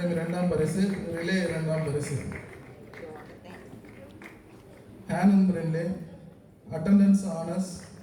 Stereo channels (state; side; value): identical; both; correlation 1.00